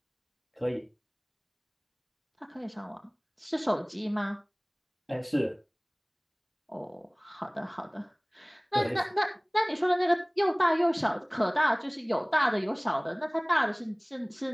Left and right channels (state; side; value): identical; both; correlation 1.00